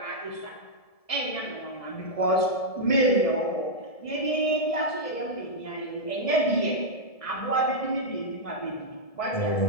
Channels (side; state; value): right; late; 1.7 ms